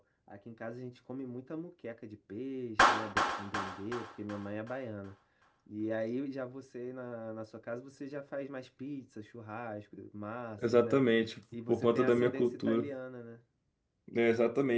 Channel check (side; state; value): both; identical; correlation 1.00